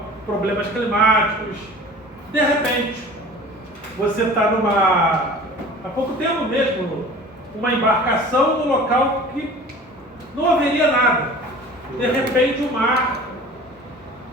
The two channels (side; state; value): both; normal; correlation 0.43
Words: problemas climáticos. De repente, você está há pouco tempo mesmo, uma embarcação no local que não haveria nada. De repente o mar